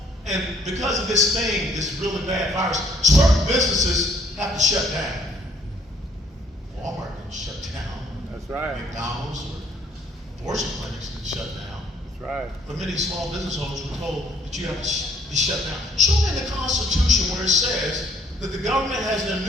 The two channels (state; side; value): normal; both; correlation 0.63